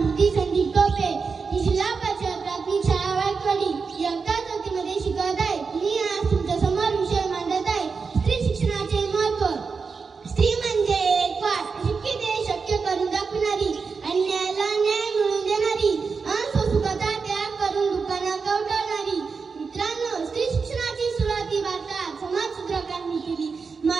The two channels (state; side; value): quieter; left; 5.1 dB